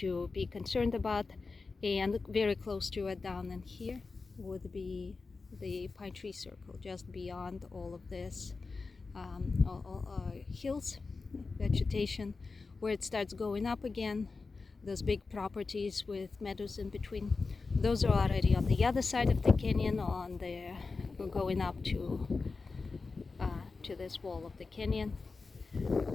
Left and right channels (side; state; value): right; quieter; 4.2 dB